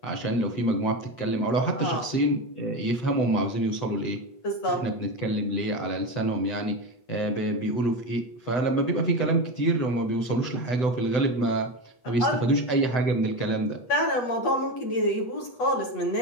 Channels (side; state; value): right; late; 7.9 ms